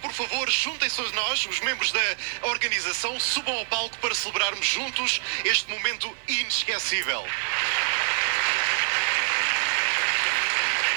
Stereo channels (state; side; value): silent; left; 61 dB below the other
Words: por favor, juntem-se a nós, os membros da organização, subam ao palco para celebrarmos juntos este momento inesquecível.